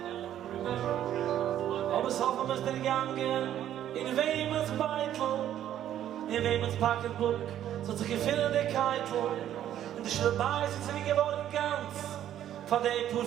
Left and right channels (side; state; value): left; quieter; 11.3 dB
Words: Aber es hoffen wir es der Gange in Wemens Beitel, in Wemens Pocketbook, so zu gewinnen der Keitel. Und die Schlebei sind sie geworden ganz, von dem pur